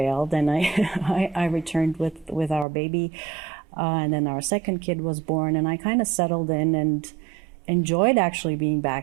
and I returned with our baby, and then our second kid was born, and I kind of settled in and enjoyed actually being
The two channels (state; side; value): drops out; left; at 2.7 s